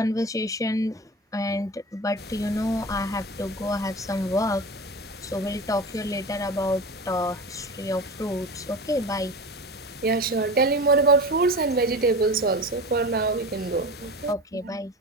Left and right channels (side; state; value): both; normal; correlation 0.31